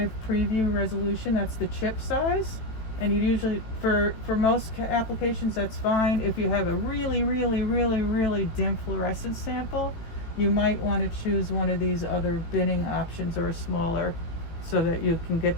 preview resolution. That's the chip size. And you usually, for most applications, that's fine. If you have a really, really, really, really dim fluorescence sample, you might want to choose one of these other binning options or a smaller, so that you can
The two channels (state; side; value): late; right; 18 ms